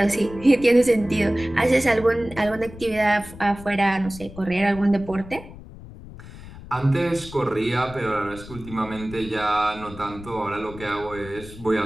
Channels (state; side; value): noise; left; rumble, 16 dB below the sound